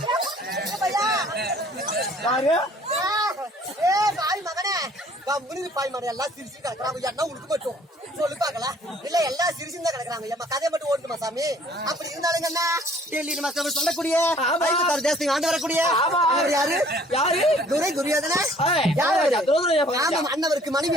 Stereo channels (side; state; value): both; normal; correlation 0.56